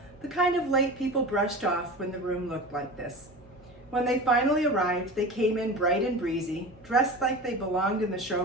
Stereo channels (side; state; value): both; normal; correlation 0.32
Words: the kind of late people brushed off when the room looked like this. When they finally arrived, they came in bright and breezy, dressed like they belonged in the